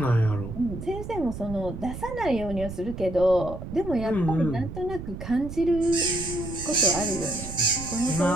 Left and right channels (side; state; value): right; noise; rumble, 9 dB below the sound